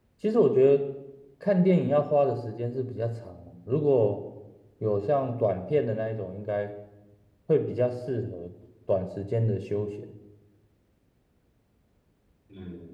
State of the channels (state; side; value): identical; both; correlation 1.00